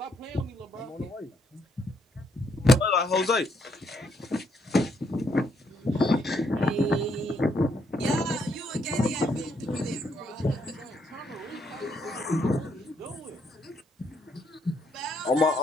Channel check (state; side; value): normal; both; correlation 0.73